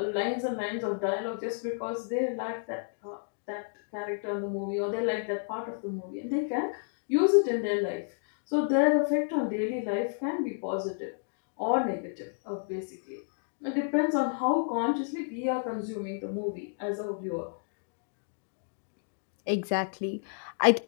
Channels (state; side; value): silent; right; digital silence